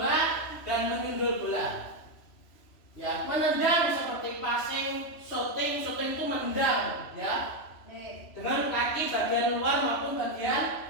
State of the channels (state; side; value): late; right; 3.0 ms